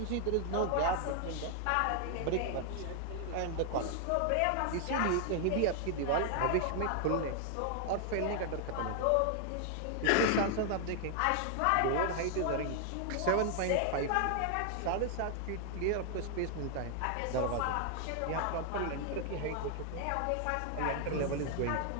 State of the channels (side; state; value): both; different; correlation 0.00